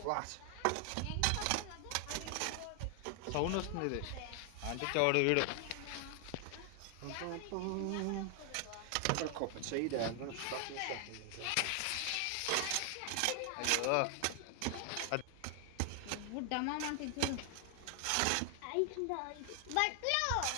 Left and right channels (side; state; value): both; different; correlation 0.00